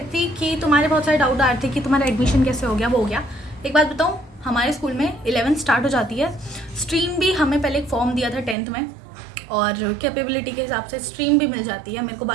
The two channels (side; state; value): left; drops out; at 8.6 s